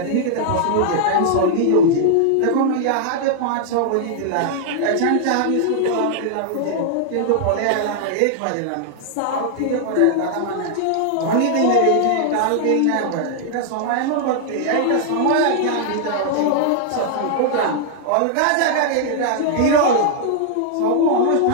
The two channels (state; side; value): different; both; correlation -0.01